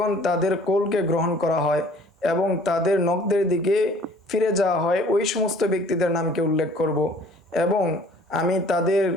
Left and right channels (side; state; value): both; normal; correlation 0.53